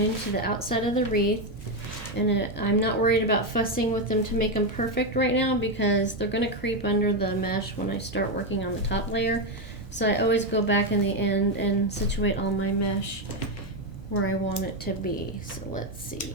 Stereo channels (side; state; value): both; normal; correlation 0.07